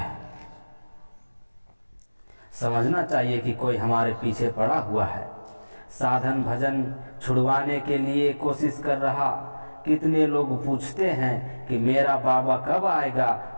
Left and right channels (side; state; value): both; inverted; correlation -1.00